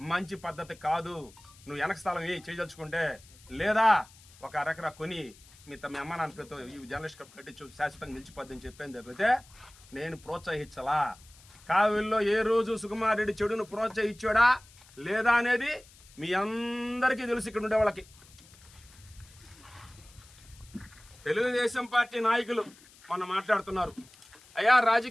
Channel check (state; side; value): noise; left; hiss, 24 dB below the sound